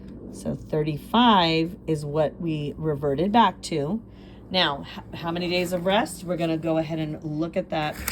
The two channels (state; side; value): identical; both; correlation 1.00